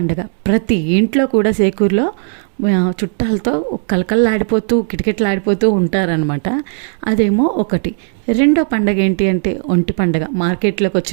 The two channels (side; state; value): left; silent; 69 dB below the other